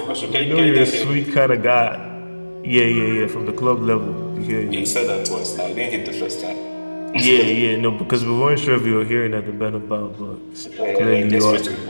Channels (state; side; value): inverted; both; correlation -1.00